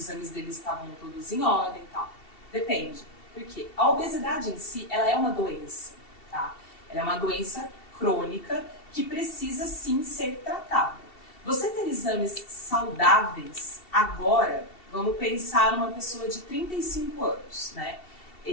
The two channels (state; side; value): late; right; 2.7 ms